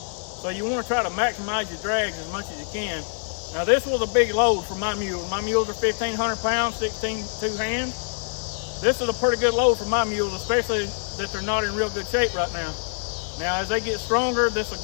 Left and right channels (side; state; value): right; silent; digital silence